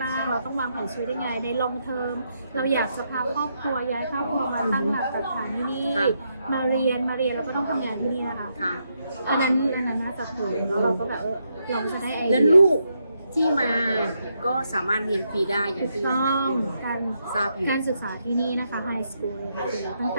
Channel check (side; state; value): both; inverted; correlation -0.80